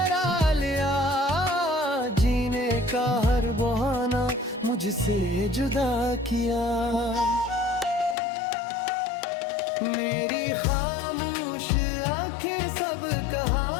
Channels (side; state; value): right; drops out; at 8.2 s